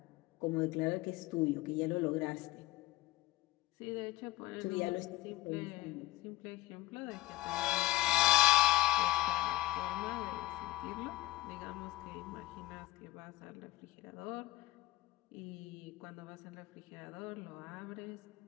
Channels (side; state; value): right; quieter; 18.0 dB